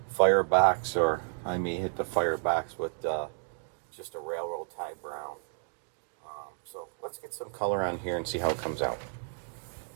firebox, or I may hit the firebox with just a railroad tie brown. So let's get some color on here and see how it comes out.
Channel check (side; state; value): left; silent; digital silence